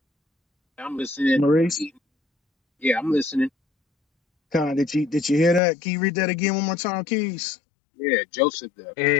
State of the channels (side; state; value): right; drops out; at 5.6 s